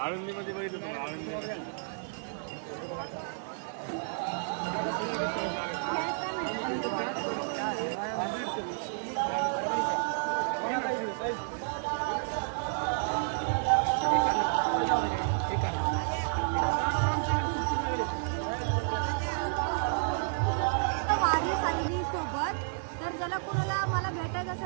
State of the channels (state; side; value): silent; left; digital silence